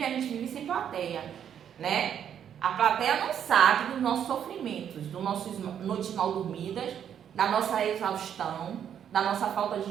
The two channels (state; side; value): quieter; left; 9.0 dB